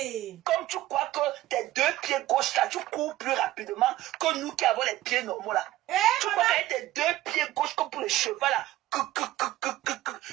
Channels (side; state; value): left; quieter; 15.5 dB